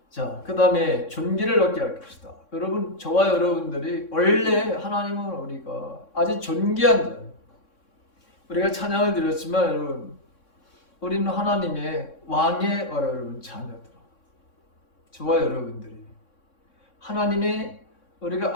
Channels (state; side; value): late; right; 3.6 ms